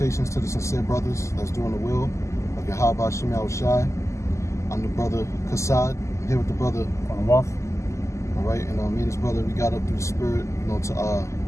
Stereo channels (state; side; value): late; right; 0.14 ms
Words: to the sincere brothers that's doing the will of Yahweh, Ba'ashem, Yahweh Shai. I'm the brother Kassad. I'm here with the brother All right, and me and his brother, we got up through the spirit,